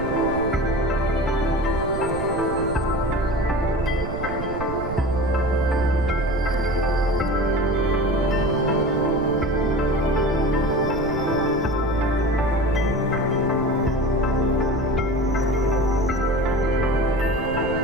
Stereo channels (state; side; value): noise; right; rumble, 7 dB below the sound